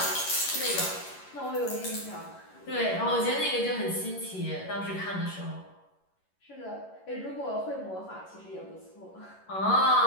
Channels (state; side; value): late; right; 11 ms